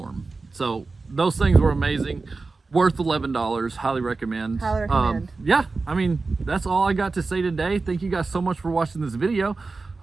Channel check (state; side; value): quieter; left; 3.9 dB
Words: So those things were amazing. Worth $11. Highly recommend. Highly recommend. Yeah, I mean, that's all I got to say today. Thank you guys so much for watching this video.